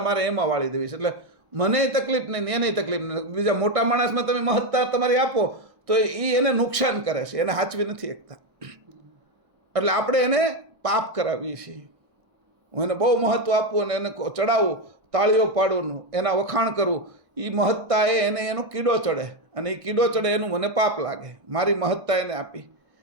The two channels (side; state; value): left; late; 1.5 ms